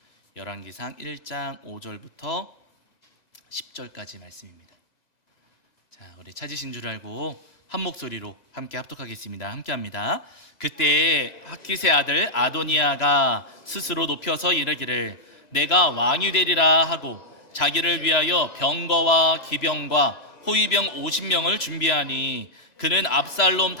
열왕기상 1장 5절부터 10절까지 말씀입니다. 자, 우리 찾으신 줄 알고 한 목소리로 함께 합독하겠습니다. 함께 합니다. 그때 학기세 아들 아도니아가 스스로 높여서 이르기를 내가 왕이 되리라 하고 자기를 위하여 병거와 기병과 호위병 50명을 준비하니 그는 압살롬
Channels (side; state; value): right; late; 1.9 ms